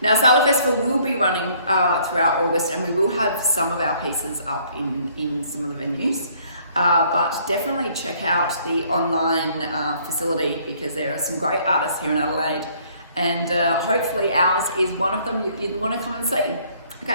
Now, Sala Festival will be running throughout August and we will have some of our pieces up in some of the venues. But definitely check out the online facility because there are some great artists here in Adelaide and hopefully ours is one of them you'd want to come and see.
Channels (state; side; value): inverted; both; correlation -0.61